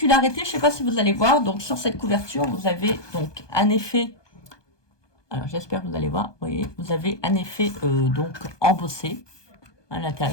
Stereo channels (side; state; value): right; late; 1.2 ms